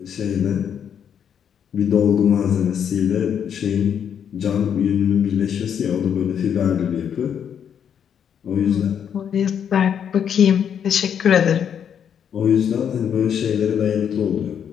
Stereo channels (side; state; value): right; quieter; 8.3 dB